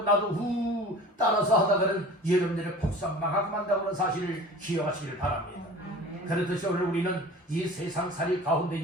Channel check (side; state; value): both; normal; correlation 0.41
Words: 나도 따라서 하다가는 여러분들의 폭삭망하고 만다는 사실을 기억하시기를 바랍니다. 그렇듯이 오늘 우리는 이 세상살이